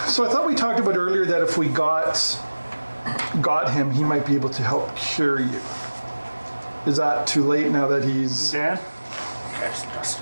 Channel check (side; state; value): both; inverted; correlation -1.00